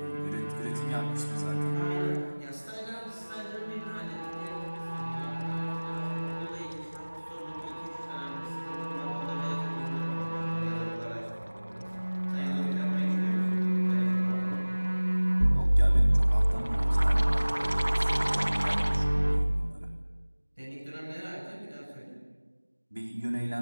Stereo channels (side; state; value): both; inverted; correlation -1.00